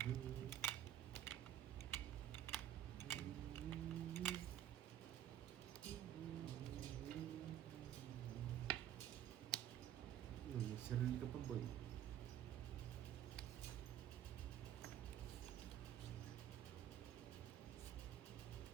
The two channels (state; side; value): quieter; left; 11.2 dB